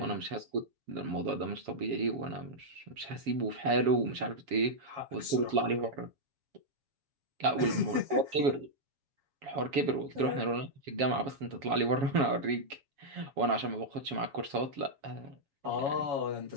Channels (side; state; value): left; late; 7.2 ms